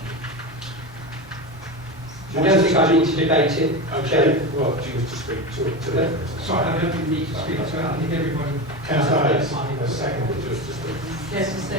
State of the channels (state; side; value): normal; both; correlation 0.21